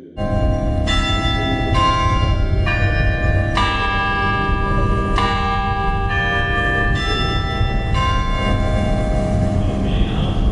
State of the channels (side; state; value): both; identical; correlation 1.00